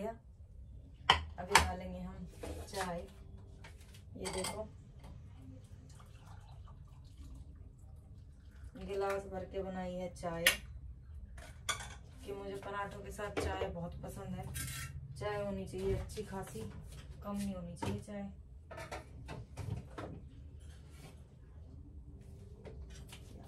अभी डालेंगे हम चाय। ये देखो गिलास भर के बनाई है चाय, कि मुझे पराठों के साथ चाय बहुत पसंद है। चाय होनी चाहिए अच्छी खासी, कम नहीं होनी चाहिए चाय।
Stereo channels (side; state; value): both; identical; correlation 1.00